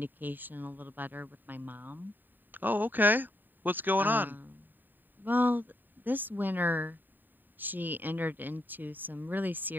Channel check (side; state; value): left; late; 0.091 ms